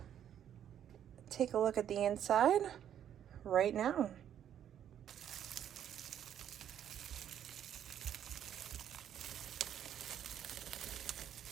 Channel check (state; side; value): quieter; left; 9.9 dB